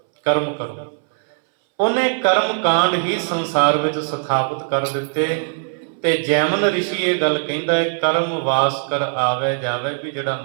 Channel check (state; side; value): silent; left; 66 dB below the other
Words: ਕਰਮ ਕਰੋ। ਉਹਨੇ ਕਰਮ ਕਾਂਡ ਹੀ ਸੰਸਾਰ ਵਿੱਚ ਸਥਾਪਿਤ ਕਰ ਦਿੱਤੇ। ਤੇ ਜੈਮਨ ਰਿਸ਼ੀ ਇਹ ਗੱਲ ਕਹਿੰਦਾ ਹੈ ਕਰਮ ਵਾਸ ਕਰ ਆਵੇ ਜਾਵੇ, ਵੀ ਜਿਹੜਾ